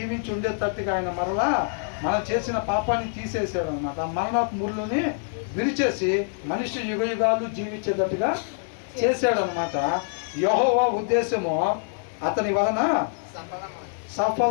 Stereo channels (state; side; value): silent; right; 58 dB below the other